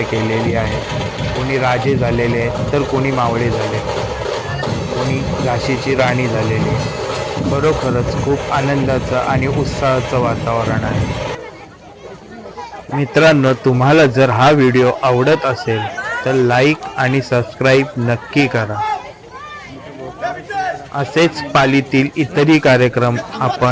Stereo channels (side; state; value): both; identical; correlation 1.00